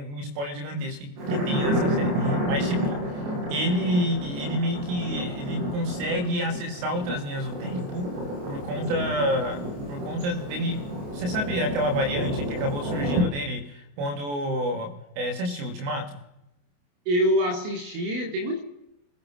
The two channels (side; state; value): left; late; 28 ms